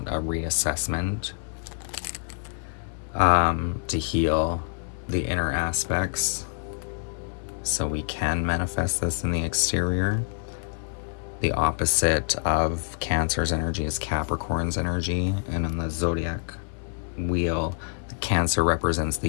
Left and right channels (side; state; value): right; silent; 61 dB below the other